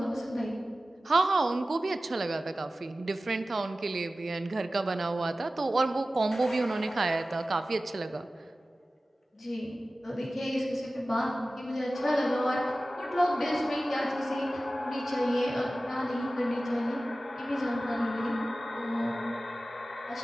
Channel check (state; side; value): normal; both; correlation 0.96